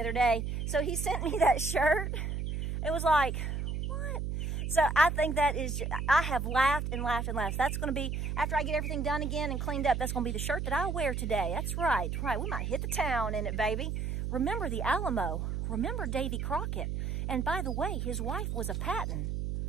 day. So he sent me that shirt. It was like, what? So I think that is, I have laughed and laughed and laughed. That's going to be, after I get everything done again and cleaned up, that's going to be the shirt that I wear today. That's right. We might hit the town in it, baby. Remember the Alamo. Remember Davy Crockett. And by the way, his wife was a Patton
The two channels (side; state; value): right; noise; hum, 2 dB below the sound